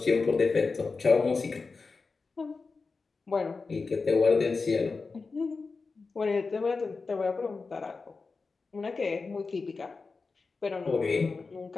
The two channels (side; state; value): right; quieter; 4.3 dB